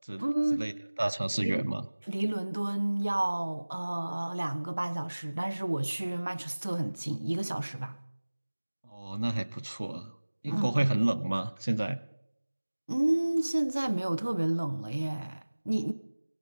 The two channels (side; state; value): both; inverted; correlation -1.00